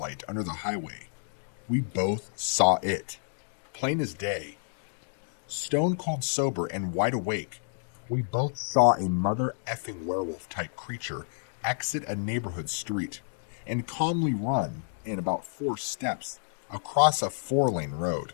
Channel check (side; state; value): right; silent; digital silence